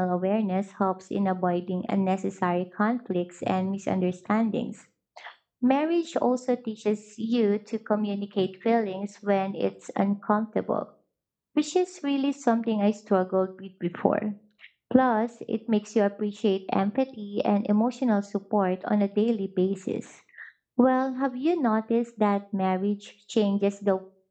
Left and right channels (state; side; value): identical; both; correlation 1.00